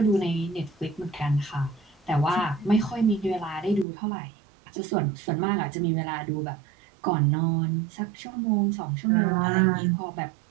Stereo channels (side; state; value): left; drops out; at 3.9 s